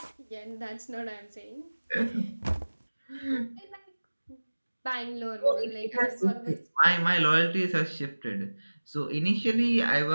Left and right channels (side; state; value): both; inverted; correlation -1.00